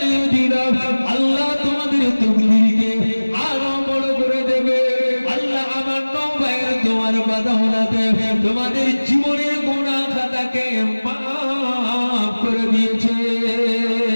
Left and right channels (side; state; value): both; inverted; correlation -1.00